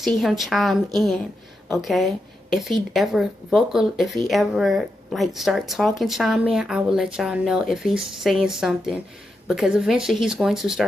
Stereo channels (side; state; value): both; normal; correlation 0.86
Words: him chime in, okay? If he ever like start talking, chime in, I will let y'all know if he's saying something, because eventually he's going to